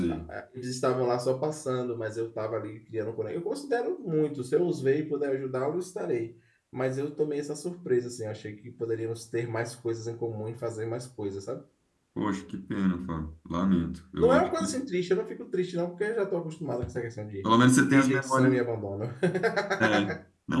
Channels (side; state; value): both; identical; correlation 1.00